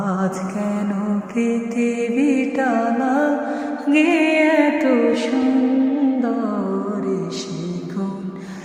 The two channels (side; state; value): both; identical; correlation 1.00